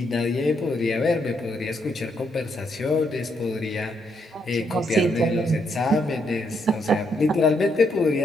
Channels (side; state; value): both; normal; correlation 0.76